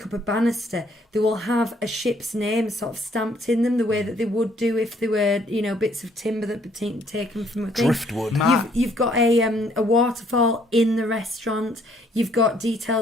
up a banister, they will have a ship's name sort of stamped in them the way that they would do if they were, bits of timber that were taken from a thing. Driftwood. You've got a waterfall in the restaurant. You've got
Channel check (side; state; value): both; normal; correlation 0.65